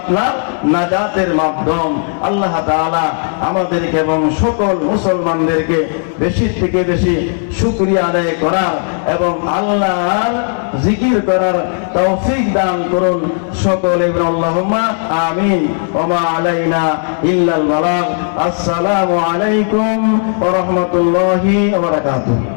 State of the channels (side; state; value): right; silent; 65 dB below the other